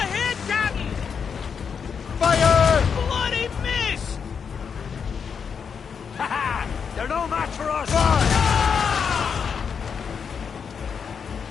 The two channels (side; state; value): right; quieter; 6.5 dB